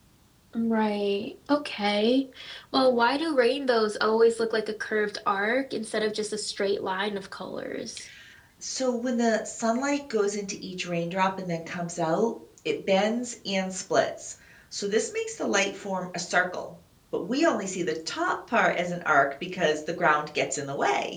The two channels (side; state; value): both; identical; correlation 1.00